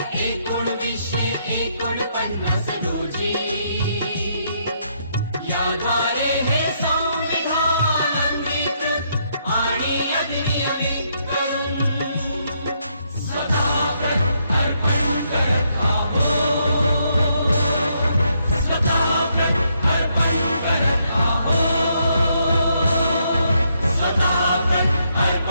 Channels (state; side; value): inverted; both; correlation -0.75